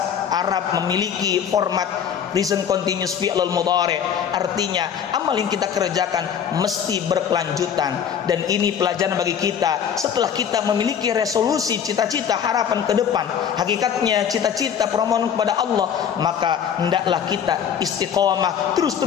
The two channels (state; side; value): quieter; right; 8.3 dB